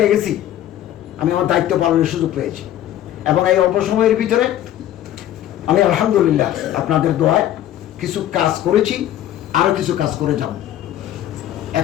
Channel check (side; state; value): right; quieter; 12.2 dB